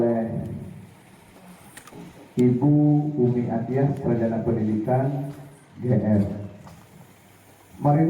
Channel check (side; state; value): both; identical; correlation 1.00